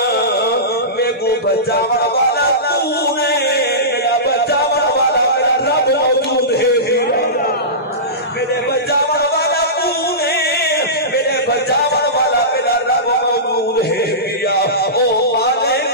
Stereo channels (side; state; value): both; normal; correlation -0.20